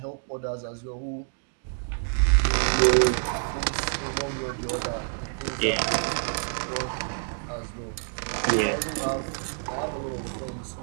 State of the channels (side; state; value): left; silent; digital silence